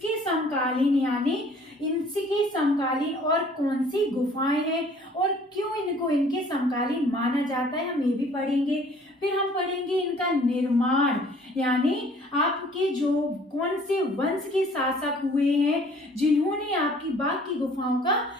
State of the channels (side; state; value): both; normal; correlation 0.55